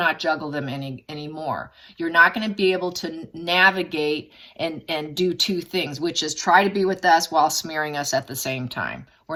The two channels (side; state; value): both; identical; correlation 1.00